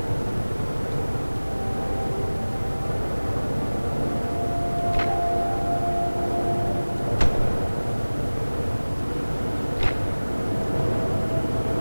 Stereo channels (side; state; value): both; inverted; correlation -1.00